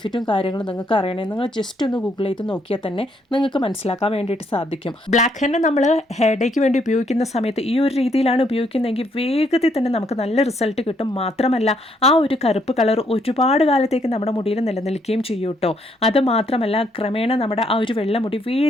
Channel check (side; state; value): both; normal; correlation 0.71